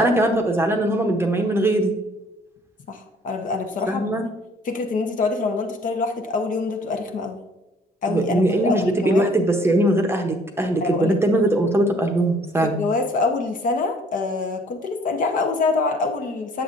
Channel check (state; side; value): normal; both; correlation 0.58